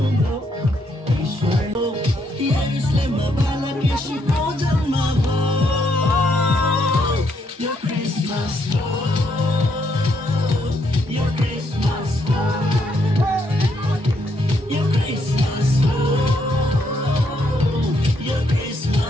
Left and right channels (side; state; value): both; normal; correlation 0.74